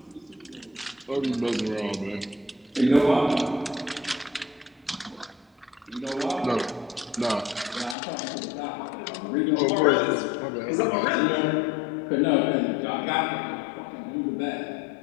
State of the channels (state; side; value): drops out; right; at 8.0 s